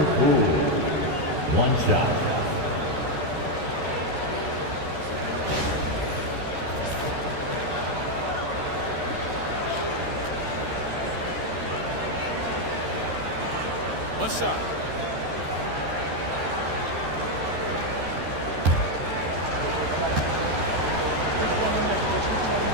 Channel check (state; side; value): late; left; 13 ms